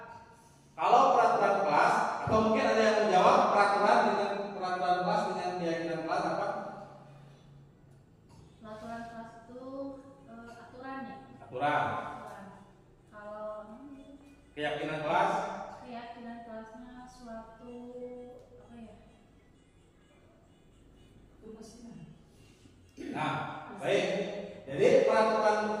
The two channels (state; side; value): identical; both; correlation 1.00